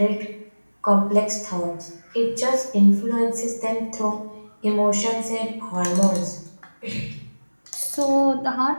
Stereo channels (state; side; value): inverted; both; correlation -1.00